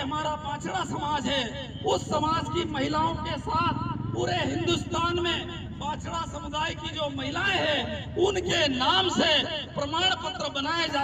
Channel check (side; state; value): both; identical; correlation 1.00